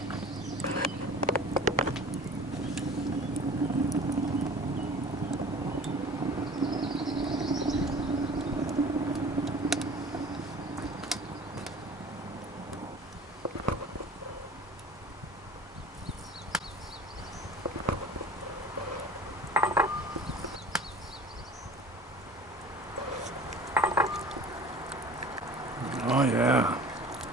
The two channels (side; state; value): both; normal; correlation 0.44